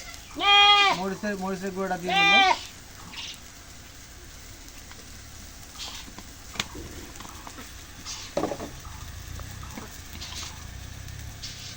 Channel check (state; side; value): identical; both; correlation 1.00